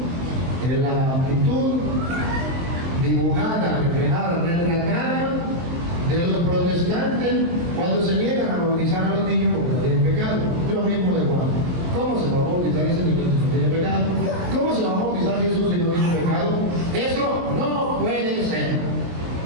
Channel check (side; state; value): left; late; 23 ms